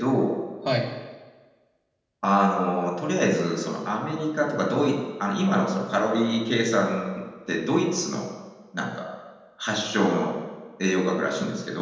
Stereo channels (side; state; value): both; identical; correlation 1.00